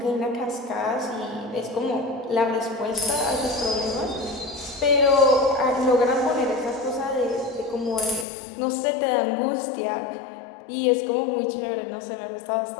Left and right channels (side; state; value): right; drops out; at 8.2 s